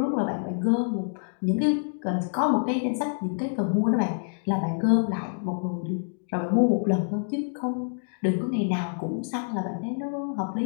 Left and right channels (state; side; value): silent; right; digital silence